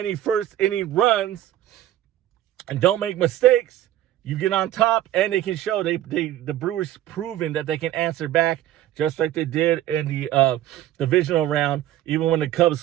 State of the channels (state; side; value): quieter; left; 13.1 dB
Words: first inning runs and don't make mistakes. You get on top and they can show the Brewers proven that they can answer back just like they did in the divisional round. Even when the Cubs